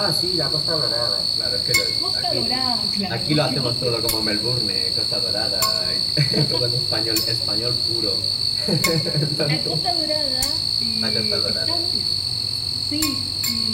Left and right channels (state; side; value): identical; both; correlation 1.00